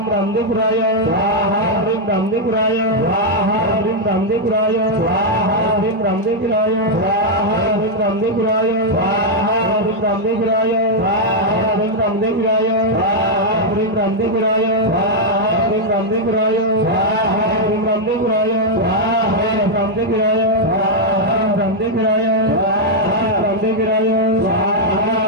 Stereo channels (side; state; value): both; normal; correlation -0.02